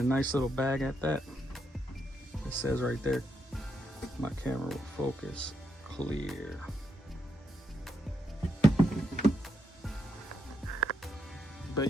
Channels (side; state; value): both; normal; correlation 0.80